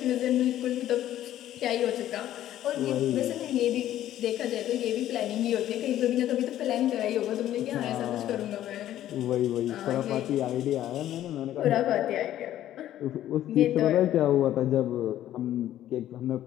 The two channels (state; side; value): quieter; right; 12.5 dB